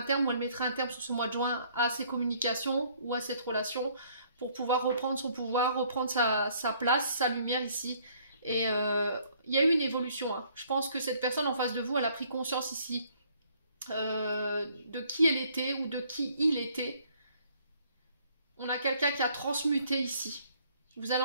terme ou elle mettra un terme sur ce mois de juin à ces communications ou à cette relation pour pouvoir reprendre son pouvoir, reprendre sa place, sa lumière ici. Et il y a eu une évolution. Hein. Je pense que cette personne en face de vous, elle a pris conscience ici de qui elle était ou de qui il était. On a quelqu'un qui a transmuté ici. Vous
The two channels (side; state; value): both; inverted; correlation -0.62